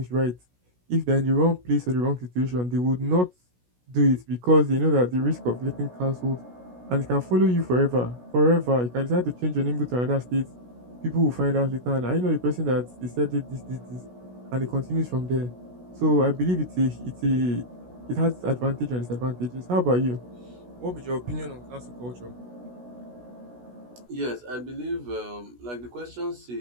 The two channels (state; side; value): late; left; 16 ms